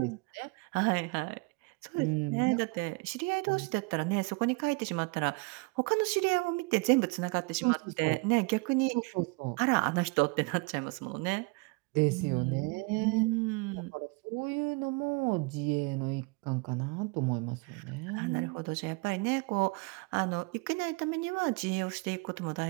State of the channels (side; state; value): left; quieter; 28.1 dB